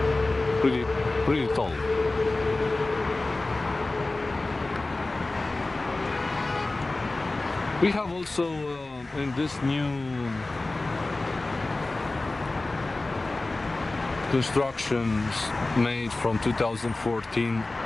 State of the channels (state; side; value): quieter; right; 3.1 dB